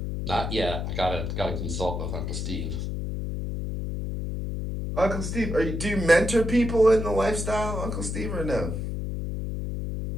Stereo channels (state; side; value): noise; left; hum, 3 dB below the sound